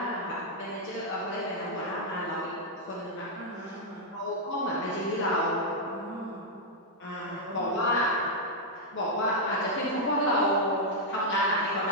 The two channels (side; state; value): both; normal; correlation -0.04